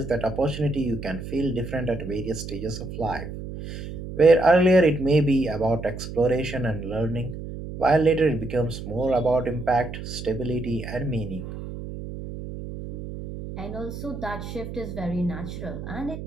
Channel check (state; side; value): noise; right; hum, 9 dB below the sound